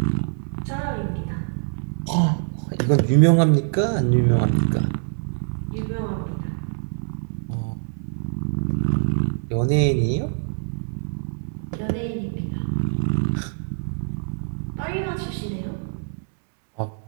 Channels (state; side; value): silent; left; digital silence